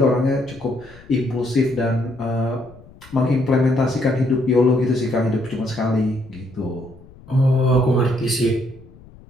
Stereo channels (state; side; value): noise; left; rumble, 22 dB below the sound